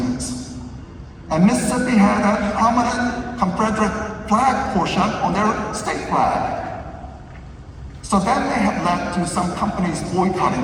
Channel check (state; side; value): identical; both; correlation 1.00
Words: And Mississippi had a prominent Confederate flag portion on their state flag. So that may have led to some companies boycotting